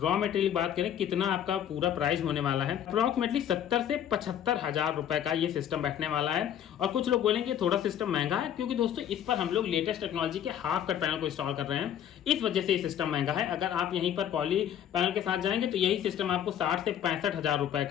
मटेरियल बात करें कितना आपका पूरा प्राइस होने वाला है, अप्रोक्सीमेटली 70 से 75,000 रुपए का ये सिस्टम बैठने वाला है। और कुछ लोग बोलेंगे थोड़ा सिस्टम महंगा है, क्योंकि दोस्तों इस पर हम लोग लेटेस्ट टेक्नोलॉजी के हाफ कट पैनल को इंस्टॉल कर रहे हैं, इस वजह से ये सिस्टम महंगा है। अगर आप यहीं पर पॉली पैनल के साथ जाएंगे तो यही सिस्टम आपको 60 से 65,000 रुपए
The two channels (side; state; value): right; quieter; 10.1 dB